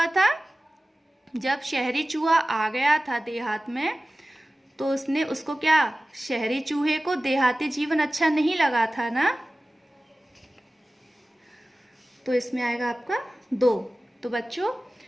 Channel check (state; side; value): normal; both; correlation 0.96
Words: था? जब शहरी चूहा आ गया था देहात में, तो उसने उसको क्या, शहरी चूहे को देहाती जीवन अच्छा नहीं लगा था ना। तो इसमें आएगा आपका 2। तो बच्चों,